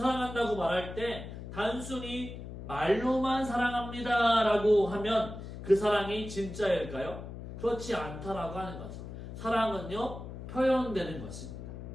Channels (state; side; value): noise; left; hum, 10 dB below the sound